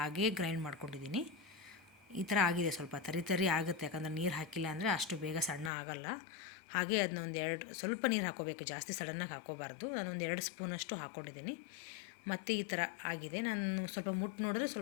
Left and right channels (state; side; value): drops out; right; at 5.7 s